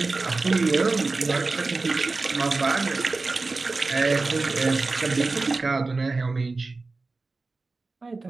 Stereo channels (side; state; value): left; quieter; 3.6 dB